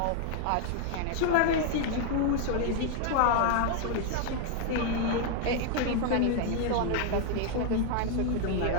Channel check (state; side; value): different; both; correlation 0.00